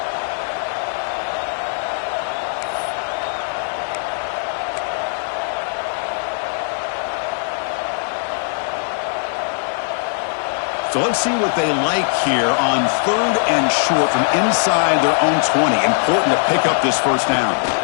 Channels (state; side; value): silent; right; 56 dB below the other